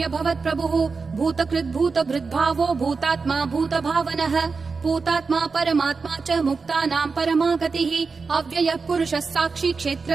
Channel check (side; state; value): left; quieter; 4.7 dB